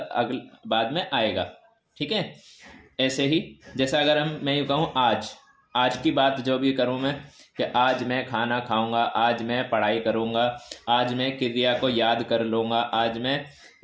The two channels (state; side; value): identical; both; correlation 1.00